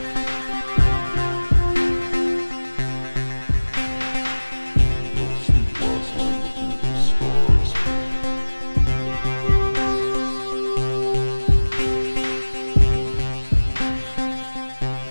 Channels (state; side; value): inverted; both; correlation -1.00